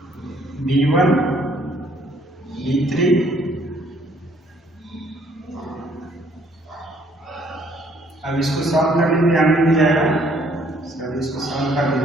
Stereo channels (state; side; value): normal; both; correlation 0.64